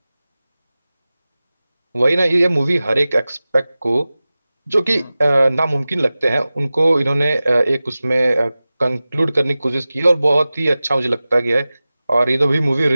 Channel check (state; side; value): inverted; both; correlation -0.96